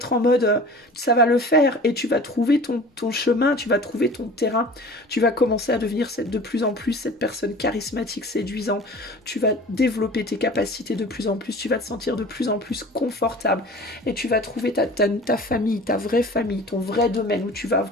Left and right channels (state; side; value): normal; both; correlation 0.41